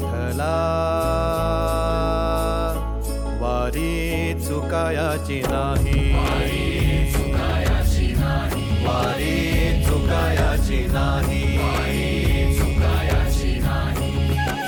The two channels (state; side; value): identical; both; correlation 1.00